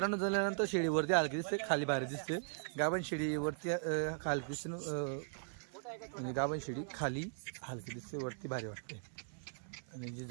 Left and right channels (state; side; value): silent; left; 52 dB below the other